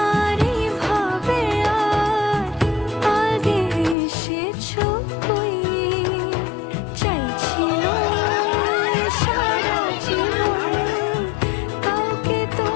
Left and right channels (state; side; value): drops out; right; at 4.0 s